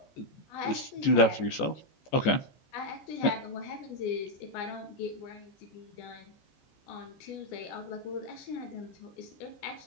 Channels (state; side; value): late; right; 14 ms